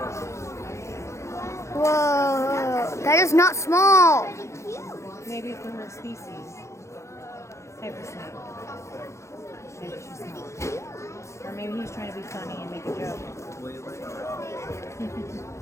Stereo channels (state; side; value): late; right; 0.14 ms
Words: Whoa, that is not small. Maybe from her species. Type of snake. Maybe she's small. Or maybe he's trying to be funny and make a joke. What are you